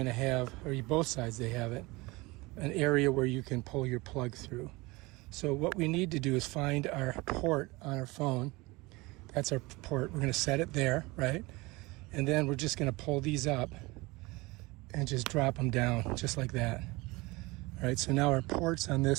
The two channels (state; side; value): quieter; left; 23.1 dB